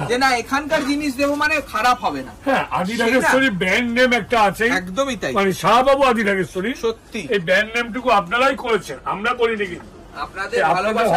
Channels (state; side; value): identical; both; correlation 1.00